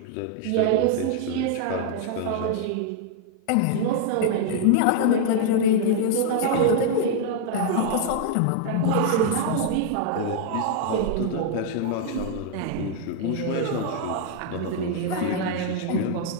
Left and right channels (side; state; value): both; different; correlation 0.00